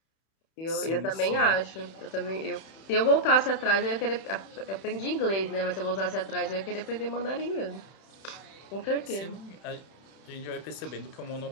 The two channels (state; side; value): late; right; 31 ms